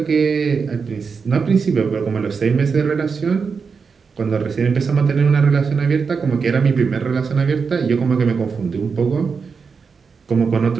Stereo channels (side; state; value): left; quieter; 5.4 dB